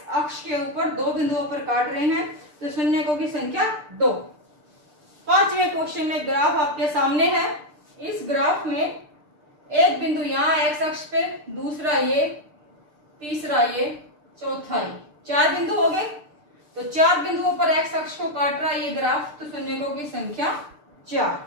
अक्ष के ऊपर दो बिंदुओं पर काट रहे हैं, तो शून्यकों की संख्या 2। पांचवें क्वेश्चन में ग्राफ आपके सामने है। इस ग्राफ में एक बिंदु यहां एक्स अक्ष पे, दूसरा ये, तीसरा ये, चौथा ये, 4 बिंदु हो गए। तो 4 बिंदुओं पर एक्स अक्ष को काट रहा है ये ग्राफ, तो शून्यकों की संख्या 4।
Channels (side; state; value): left; late; 6.7 ms